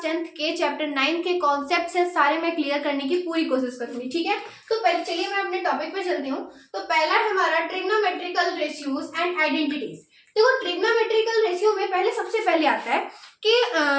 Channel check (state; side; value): identical; both; correlation 1.00